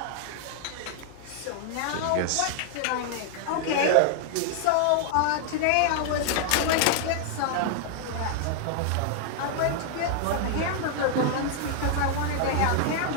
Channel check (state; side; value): different; both; correlation 0.00